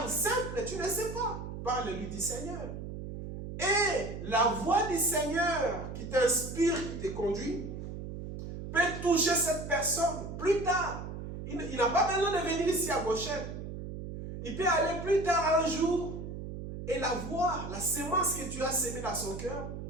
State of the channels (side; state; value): right; noise; hum, 8 dB below the sound